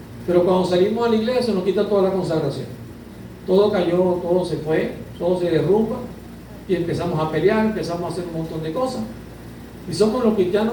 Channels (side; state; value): both; identical; correlation 1.00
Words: Pero cuando salimos a la iglesia se nos quita toda la consagración. Todo cayó, todo se fue, todo se derrumba y empezamos a pelear, empezamos a hacer un montón de cosas. Y somos los